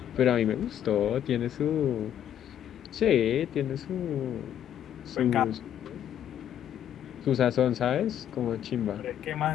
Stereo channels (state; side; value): quieter; right; 10.3 dB